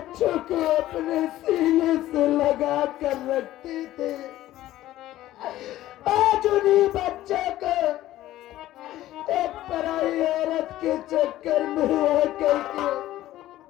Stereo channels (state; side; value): quieter; right; 14.7 dB